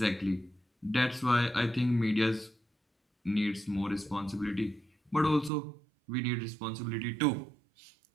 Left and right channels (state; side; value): drops out; left; at 5.5 s